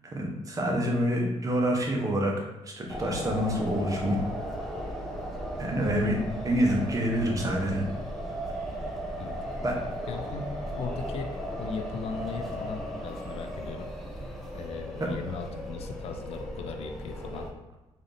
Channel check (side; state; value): both; normal; correlation 0.69